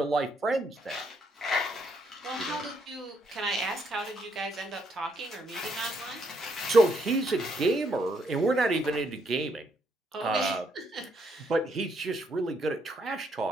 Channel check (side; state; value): both; normal; correlation 0.73